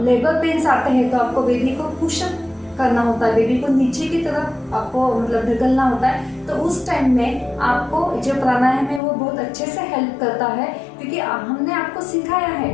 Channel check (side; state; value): right; drops out; at 9.0 s